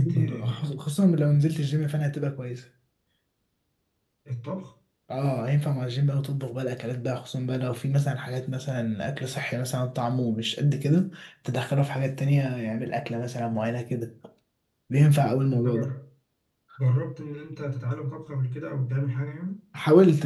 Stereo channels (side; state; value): both; identical; correlation 1.00